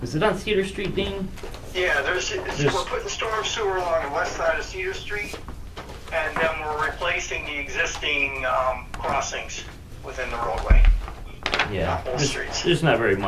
is it on Cedar Street, Dean? yeah, we're putting storm sewer along the west side of Cedar Street, and then we're replacing the existing crossings within the roadway. Yeah. Both streets. There's not very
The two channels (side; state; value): both; identical; correlation 1.00